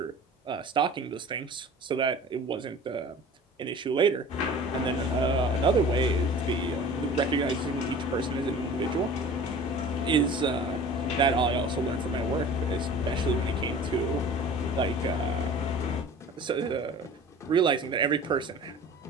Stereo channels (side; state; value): both; normal; correlation 0.42